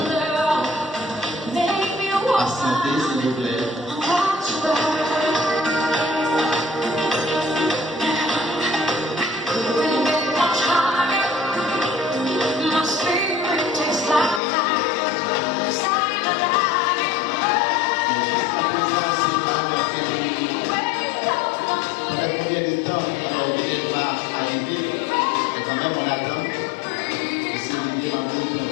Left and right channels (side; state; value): right; drops out; at 14.4 s